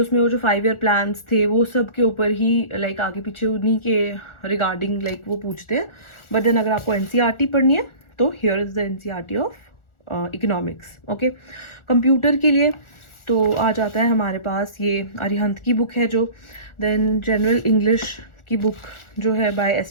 वो जो 5 year प्लान्स थे वो सब के ऊपर ही लाइक आगे पीछे उन्हीं के रिगार्डिंग लाइक वो पूछते हैं. बट देन अगर आपको NCERT पढ़नी है तो here is the NCERT of economics. Okay, computer के लिए तो आ जाता है हमारे पास ये अरिहंत की बुक है जो. देन जनरल इंग्लिश की बुक जो है बाय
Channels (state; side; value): late; right; 1.4 ms